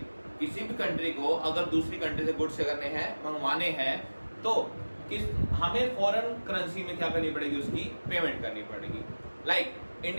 किसी भी कंट्री को अगर दूसरी कंट्री से गुड्स करने हैं, मंगवाने हैं, तो हमें फॉरेन करेंसी में क्या करनी पड़ेगी, उसकी पेमेंट करनी पड़ेगी। लाइक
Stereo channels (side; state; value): both; inverted; correlation -1.00